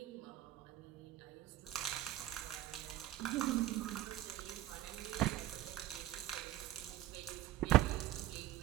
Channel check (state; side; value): quieter; left; 14.7 dB